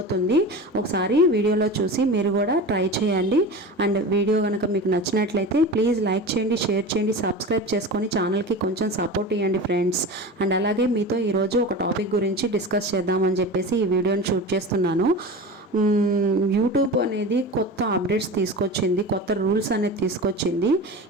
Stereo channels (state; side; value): normal; both; correlation 0.30